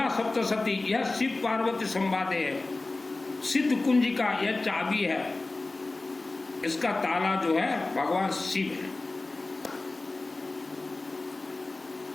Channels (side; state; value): right; quieter; 3.2 dB